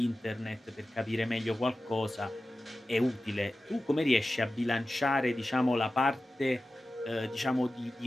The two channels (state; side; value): normal; both; correlation 0.94